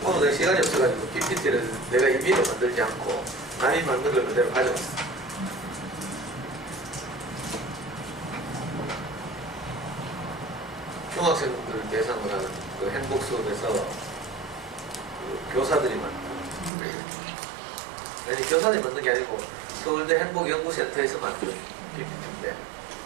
오늘 내가 시간이 없어가지고 PPT를 내가 임의로 만들지 않고 남이 만든 걸 그대로 가져왔어. 중학생들 대상으로 하는 그 행복 수업에서 그 교사들이 만든, 아니 교사들이 만든 게 아니고 서울대 행복연구센터에서 만든 PPT인데,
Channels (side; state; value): left; drops out; at 16.7 s